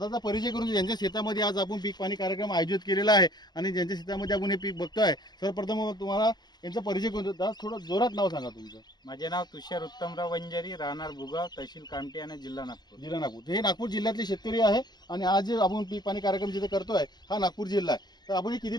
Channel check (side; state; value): right; late; 0.20 ms